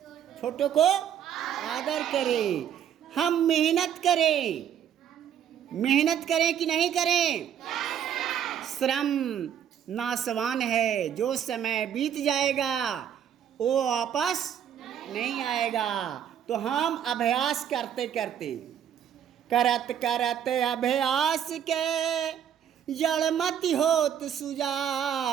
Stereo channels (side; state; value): left; quieter; 9.3 dB